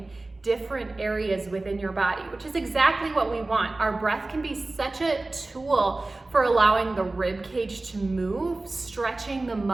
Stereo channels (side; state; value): left; quieter; 3.1 dB